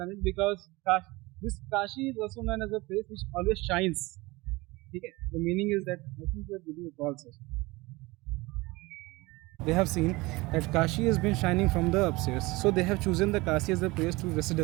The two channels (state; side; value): quieter; left; 22.4 dB